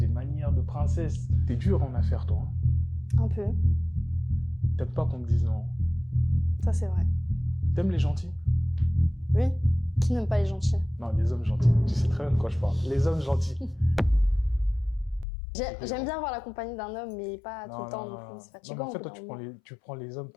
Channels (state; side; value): drops out; right; at 15.2 s